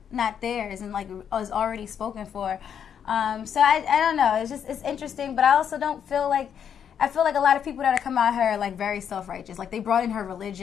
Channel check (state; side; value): quieter; right; 8.3 dB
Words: theirs and like is already spoken for. So I don't know. It's interesting, but I also don't feel like, I feel like a lot of people that are come out here are like very self-righteous. Like, they brought in her